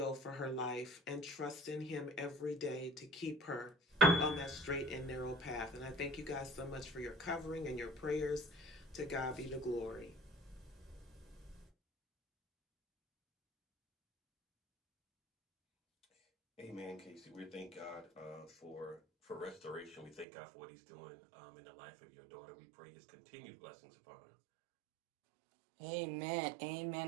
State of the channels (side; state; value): left; drops out; at 20.2 s